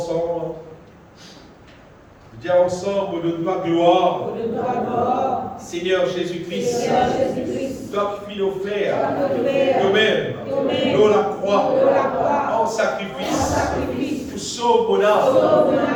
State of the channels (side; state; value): both; identical; correlation 1.00